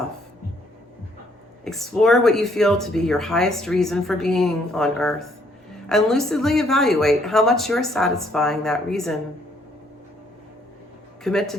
Explore what you feel to be your highest reason for being on earth and lucidly evaluate how much you're satisfying that reason. Commit to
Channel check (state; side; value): normal; both; correlation 0.67